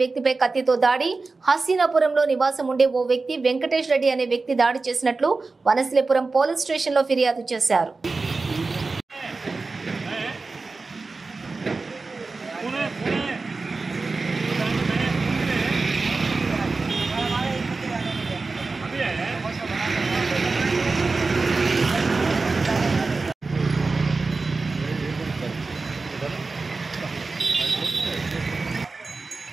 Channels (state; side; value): quieter; left; 3.9 dB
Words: వ్యక్తిపై కత్తితో దాడి. హసీనాపురంలో నివాసం ఉండే ఓ వ్యక్తి వెంకటేష్ రెడ్డి అనే వ్యక్తి దాడి చేసినట్లు వనస్థలిపురం పోలీస్ స్టేషన్లో ఫిర్యాదు చేశారు.